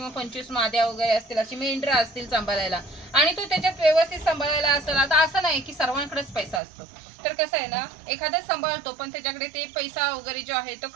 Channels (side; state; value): left; drops out; at 6.6 s